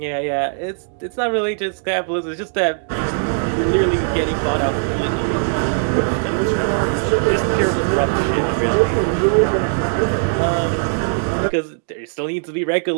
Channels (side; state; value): left; silent; digital silence